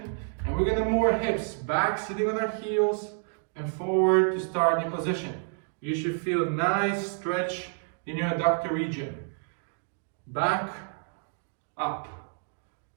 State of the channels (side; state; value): left; silent; 59 dB below the other